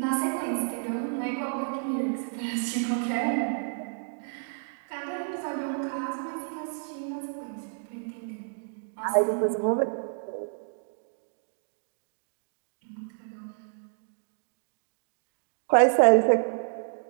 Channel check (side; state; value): left; silent; digital silence